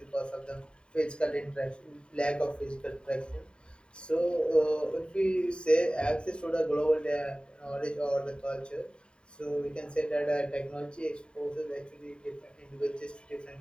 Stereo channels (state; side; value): late; right; 0.051 ms